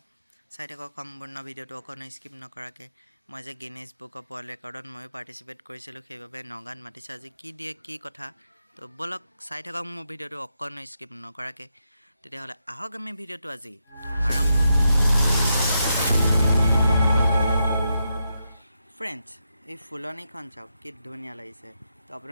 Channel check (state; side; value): inverted; both; correlation -0.84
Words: চাই থাকক সম্পূৰ্ণ ভিডিঅ'টো অকণো স্কিপ নকৰাকৈ। মই যে গিনিজ বুক অফ ৱৰ্ল্ড ৰেকৰ্ডত ময়ো পাৰ্টিচিপেট কৰিছিলোঁ, সেইবাবে নগাঁৱত মাতিছে। আজি কি দিয়ে কি কথা, তো ব'লক চাই থাকক মোৰ ভিডিঅ'টো অকণো স্কিপ নকৰাকৈ। তেতিয়াহ'লে আহক আমি ভিডিঅ'টো আজি আৰম্ভ কৰোঁ। ফ্ৰেণ্ডছ, এই ফুলনিখন চাওক, কি ধুনীয়া লাগিছে। তো